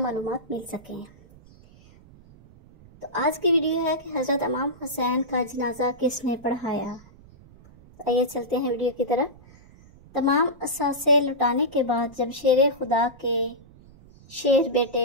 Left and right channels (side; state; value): right; noise; rumble, 24 dB below the sound